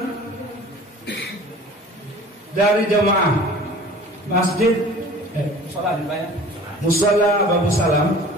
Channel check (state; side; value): normal; both; correlation 0.44